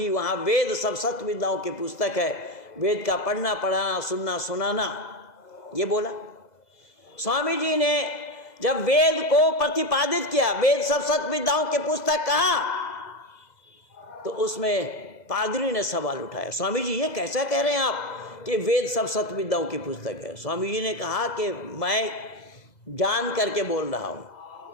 वहाँ वेद सब सत्य विद्याओं की पुस्तक है, वेद का पढ़ना पढ़ाना सुनना सुनाना, ये बोला। स्वामी जी ने जब वेद को प्रतिपादित किया, वेद सब सत्य विद्याओं की पुस्तक कहा, तो उसमें पादरी ने सवाल उठाया, स्वामी जी ये कैसा कह रहे हैं आप कि वेद सब सत्य विद्याओं की पुस्तक है? स्वामी जी ने कहा कि मैं जान करके बोल रहा हूँ।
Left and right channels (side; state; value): right; late; 2.0 ms